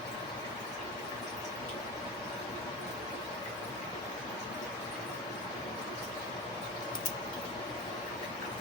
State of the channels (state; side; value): normal; both; correlation 0.28